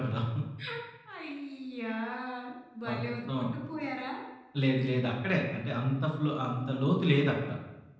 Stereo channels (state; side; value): identical; both; correlation 1.00